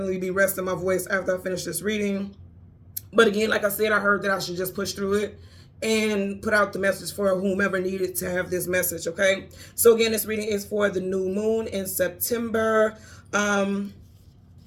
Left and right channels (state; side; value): identical; both; correlation 1.00